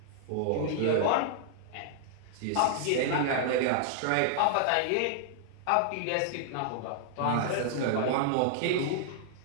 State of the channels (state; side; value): different; both; correlation -0.01